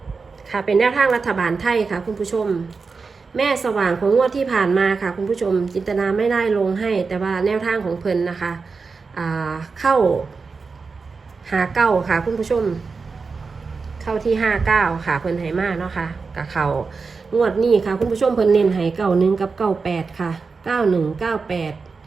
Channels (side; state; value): left; quieter; 4.6 dB